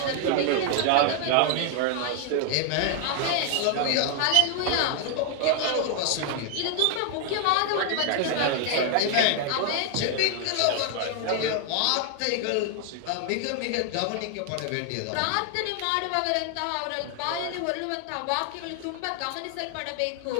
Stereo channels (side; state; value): both; different; correlation 0.00